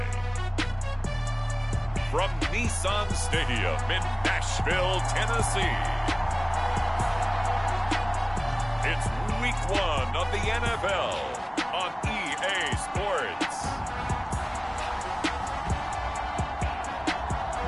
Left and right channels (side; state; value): both; identical; correlation 1.00